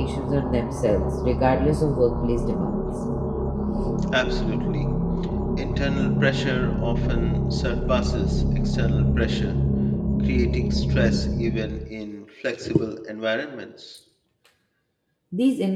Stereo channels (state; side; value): identical; both; correlation 1.00